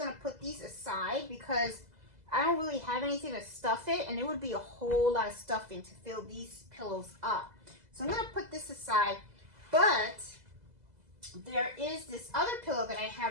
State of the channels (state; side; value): late; left; 2.0 ms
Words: to put these aside because I don't really have anything to stuff it, and it would be a whole lot of stuffing to fill these pillows up. So I'm going to put this aside, but there is this other pillow that I